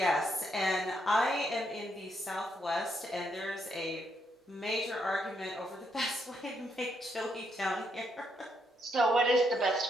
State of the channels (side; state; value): both; normal; correlation 0.77